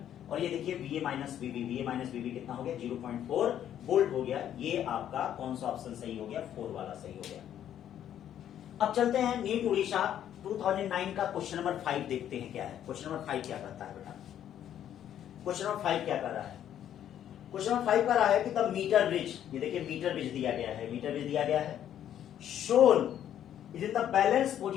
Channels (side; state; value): right; quieter; 10.5 dB